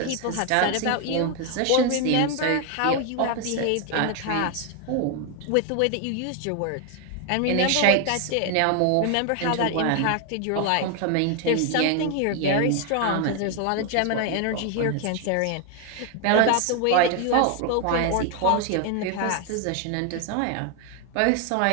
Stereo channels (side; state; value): both; different; correlation 0.01